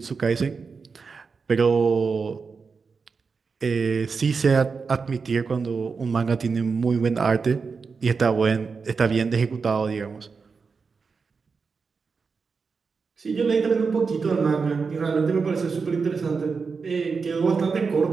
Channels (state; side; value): quieter; left; 5.0 dB